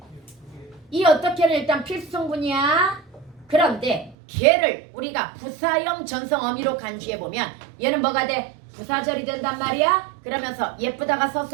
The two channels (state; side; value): drops out; left; at 4.2 s